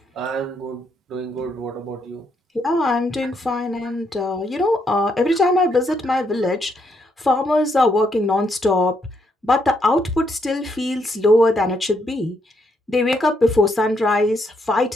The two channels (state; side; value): normal; both; correlation 0.75